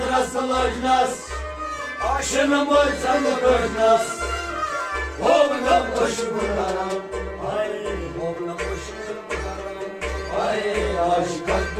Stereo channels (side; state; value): both; identical; correlation 1.00